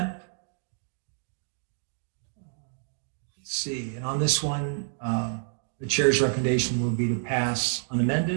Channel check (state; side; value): silent; left; digital silence